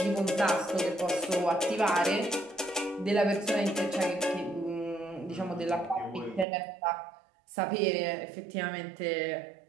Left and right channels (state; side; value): drops out; left; at 6.5 s